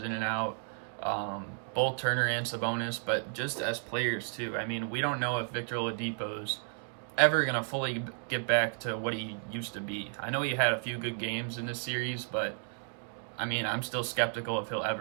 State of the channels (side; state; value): left; silent; 56 dB below the other